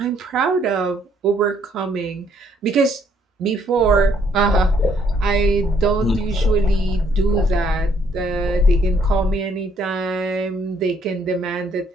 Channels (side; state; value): both; normal; correlation 0.67